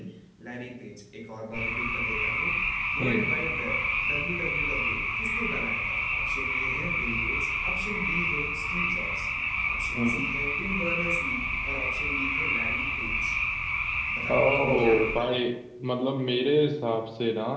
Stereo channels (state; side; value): identical; both; correlation 1.00